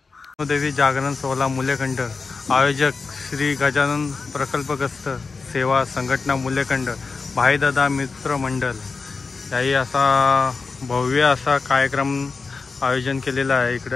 देवी जागरण सोहळा मुलेखंड आयोजक श्री गजानन प्रकल्पग्रस्त सेवा संघटना मुलेखंड भाईदादा मित्र मंडळ याही असा भव्य असा कार्यक्रम आयोजन केलेला आहे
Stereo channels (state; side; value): quieter; right; 4.5 dB